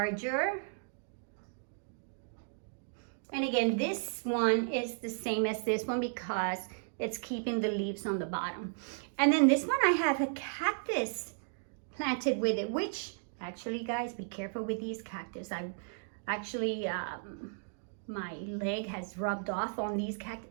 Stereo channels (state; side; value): silent; left; digital silence